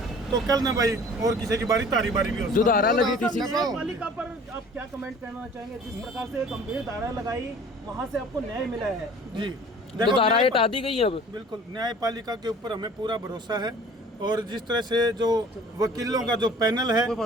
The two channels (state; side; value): normal; both; correlation 0.48